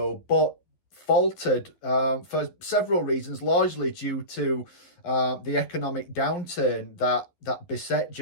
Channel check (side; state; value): right; late; 11 ms